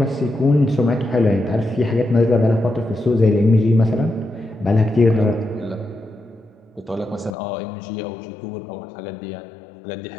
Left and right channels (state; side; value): drops out; right; at 7.4 s